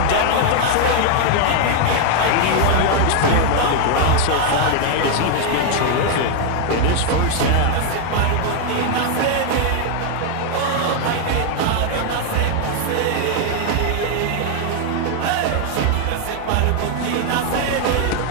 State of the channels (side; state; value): both; different; correlation 0.00